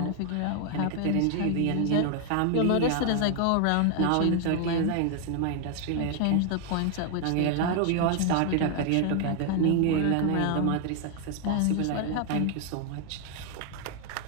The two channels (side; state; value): both; different; correlation 0.00